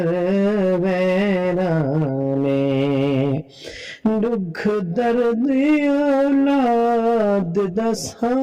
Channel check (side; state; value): both; identical; correlation 1.00